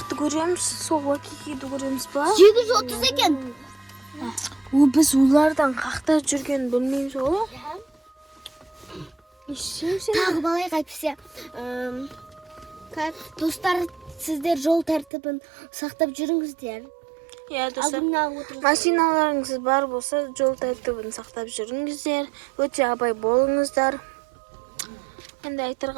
көреміз, сол вайкикиді көреміз ба? 730 екен. Біз олардан қақта жүрген білмейміз ғой. Тағы балайық әйтпесе. Достар, сіздер жол тәртібін сақтап жүріңіздер. Достар, машиналарыңыз бар болса, жол тәртібін сақтап жүріңіздер. Өте абай болыңыздар. Енді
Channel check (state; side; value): drops out; left; at 15.1 s